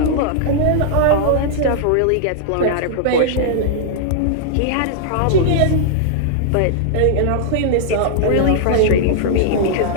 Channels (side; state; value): both; different; correlation -0.01